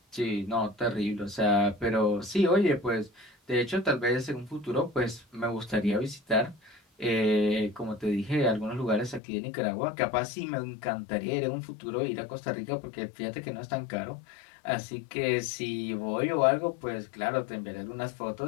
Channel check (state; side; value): drops out; right; at 9.2 s